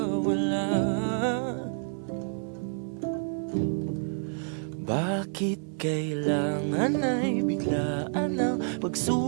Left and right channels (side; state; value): left; silent; 59 dB below the other